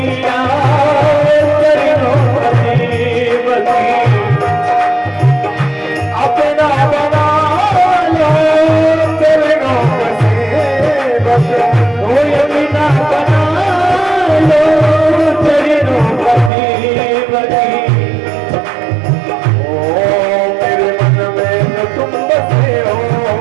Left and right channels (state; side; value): drops out; left; at 16.5 s